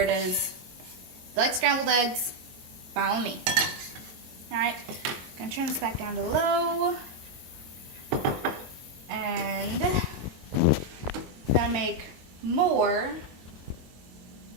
is, you like scrambled eggs, follow me. Alright, gonna turn this back down to low. And gonna make more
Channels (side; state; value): left; late; 22 ms